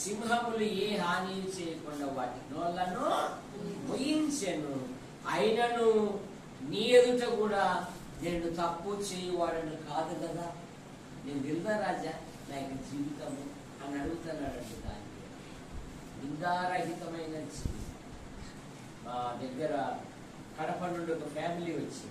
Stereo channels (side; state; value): both; identical; correlation 1.00